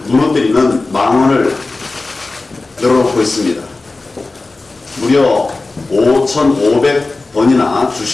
무너뜨리는 망언을 열어놓고 있습니다. 무려 5,500번이나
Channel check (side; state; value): right; quieter; 3.4 dB